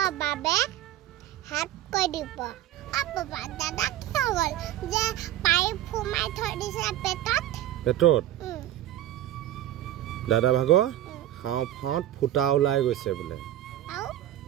বাবে হেল্প কৰি দিব পাপা দাদা কি হ'ল যে পাইপ ফুমাই থৈ দিছে পেটত দাদা ভাগ হাও ফাঁত ফুটা ওলাই গৈছে বোলে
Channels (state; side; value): quieter; left; 13.2 dB